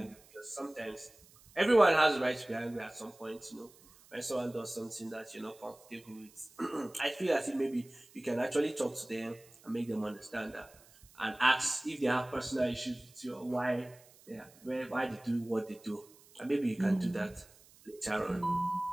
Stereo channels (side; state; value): right; noise; hiss, 25 dB below the sound